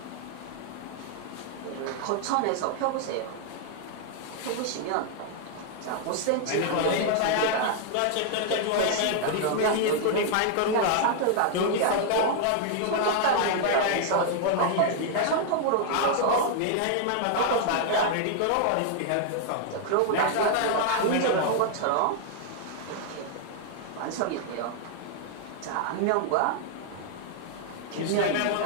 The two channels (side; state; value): both; different; correlation 0.00